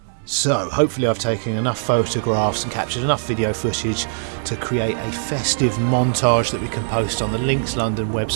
So, hopefully I've taken enough photographs and captured enough video footage to create a festive montage that we can post on the Links London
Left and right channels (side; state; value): left; silent; digital silence